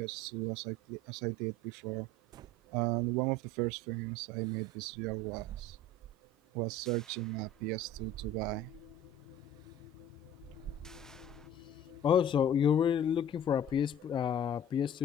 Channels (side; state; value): both; normal; correlation 0.44